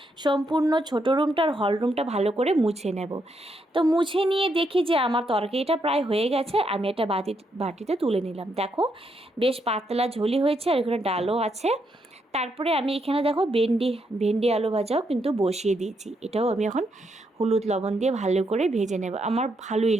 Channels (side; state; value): both; normal; correlation 0.78